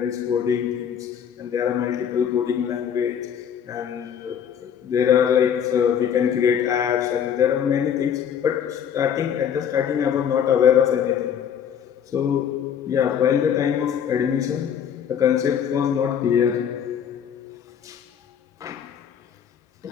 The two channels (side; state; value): right; quieter; 8.5 dB